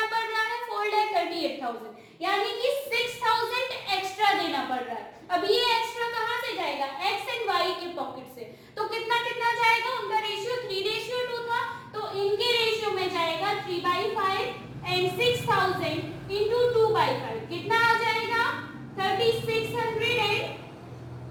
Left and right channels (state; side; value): identical; both; correlation 1.00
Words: पड़ रहा है, 4,38,000, यानी कि 6,000 एक्स्ट्रा देना पड़ रहा है। अब ये एक्स्ट्रा कहां से जाएगा, एक्स एंड वाई के पॉकेट से। तो कितना कितना जाएगा, उनका रेशियो 3:2 था, तो इनके रेशियो में जाएगा 3/5 एंड 6,000 इंटू 2/5 कितना आ जाएगा, 3,600 एंड